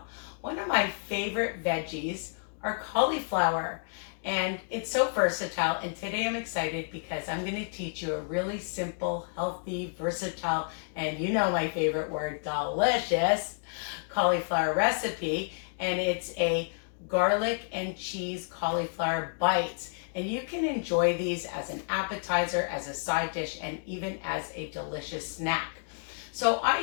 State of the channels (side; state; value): right; silent; digital silence